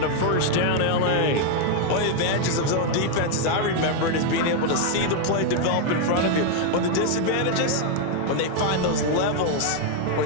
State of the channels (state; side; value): different; both; correlation 0.01